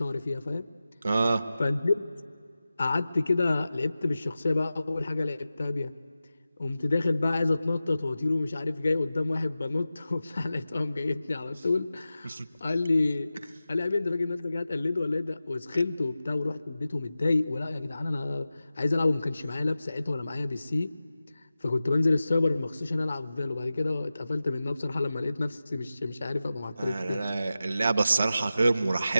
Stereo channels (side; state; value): both; inverted; correlation -0.94